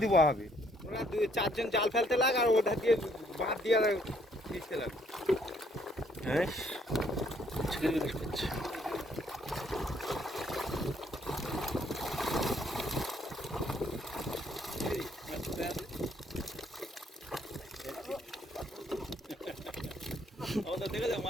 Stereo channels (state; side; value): normal; both; correlation 0.66